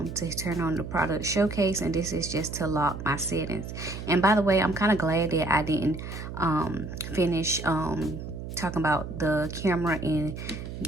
turn on the product showcase, and this is just to lock my settings. And by the way, I'm kind of glad that I didn't finish talking about the camera and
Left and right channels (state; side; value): noise; right; hum, 8 dB below the sound